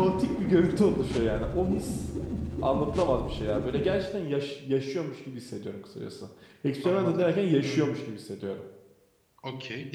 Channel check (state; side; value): identical; both; correlation 1.00